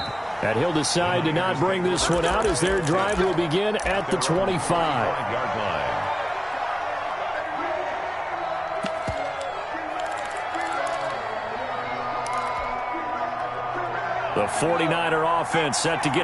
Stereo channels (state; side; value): identical; both; correlation 1.00